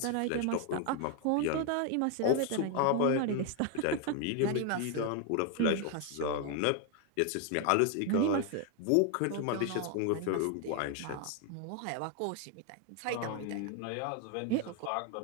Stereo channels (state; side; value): different; both; correlation 0.01